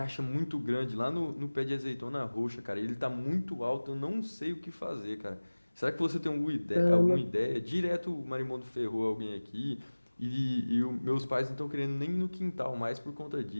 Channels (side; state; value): both; inverted; correlation -1.00